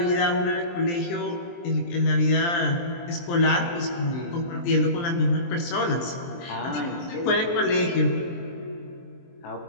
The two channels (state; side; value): late; right; 23 ms